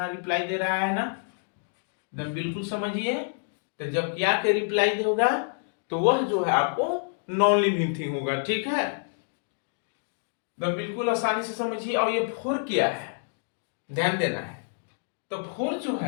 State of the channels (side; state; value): right; silent; digital silence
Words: रिप्लाई दे रहा है ना, एकदम बिल्कुल समझिए। तो जब क्या के रिप्लाई देगा तो वह जो है आपको नॉन लिविंग थिंग होगा, ठीक है, बिल्कुल आसानी से समझिए। और ये फोर क्या है, ध्यान देना है, तो फोर जो